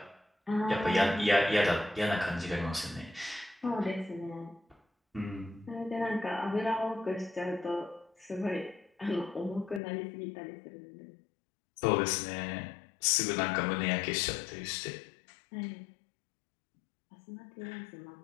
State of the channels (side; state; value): right; drops out; at 9.8 s